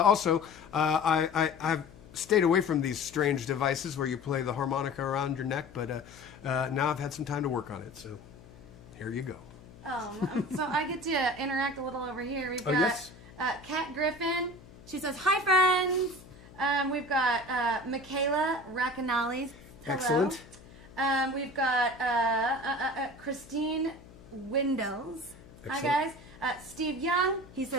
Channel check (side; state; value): left; noise; hum, 21 dB below the sound